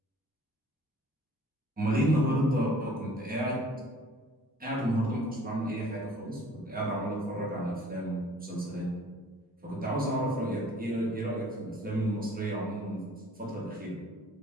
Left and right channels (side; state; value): both; normal; correlation 0.53